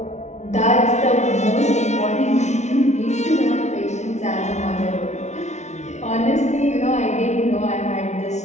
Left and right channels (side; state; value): right; late; 0.33 ms